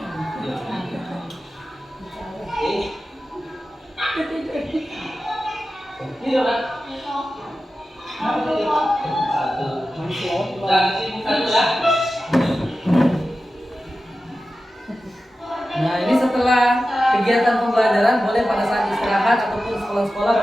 Dan sini satu ya. kegiatan pembelajaran boleh pada saat istirahat ataupun sekolah-sekolah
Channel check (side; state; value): both; normal; correlation 0.94